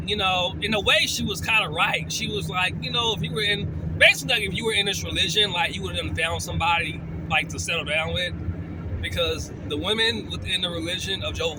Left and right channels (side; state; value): both; identical; correlation 1.00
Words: you know, in a way she was kind of right. She was like, you know, if you were in this religion, like, you would have found somebody like to settle down with. Because the women within the religion of Jehovah's